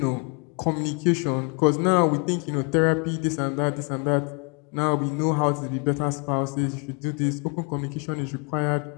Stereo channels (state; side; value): quieter; right; 34.6 dB